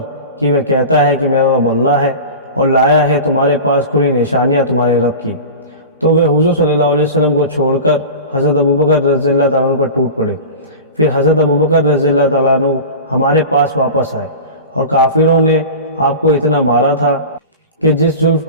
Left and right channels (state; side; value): inverted; both; correlation -0.32